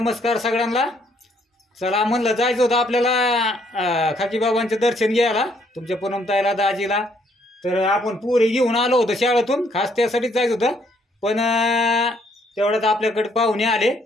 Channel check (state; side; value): normal; both; correlation 0.68